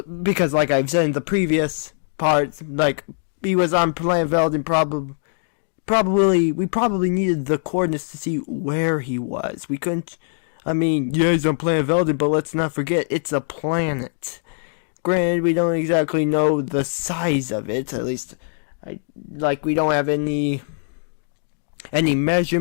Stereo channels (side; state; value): right; silent; digital silence